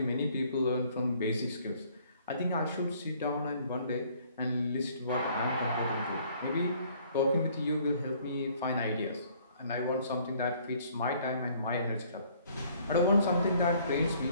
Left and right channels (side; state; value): both; inverted; correlation -0.60